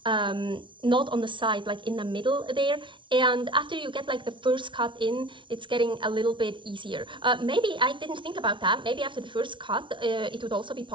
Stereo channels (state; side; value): late; left; 0.24 ms